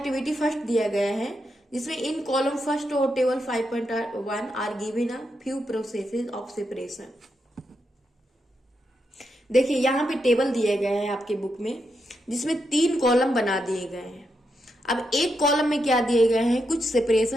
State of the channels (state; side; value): normal; both; correlation 0.83